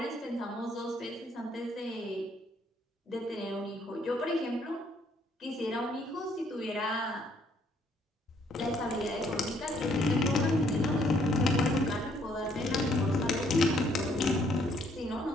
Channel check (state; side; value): normal; both; correlation 0.67